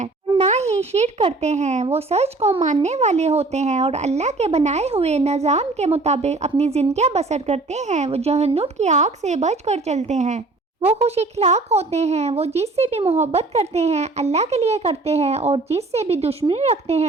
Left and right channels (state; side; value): quieter; left; 3.3 dB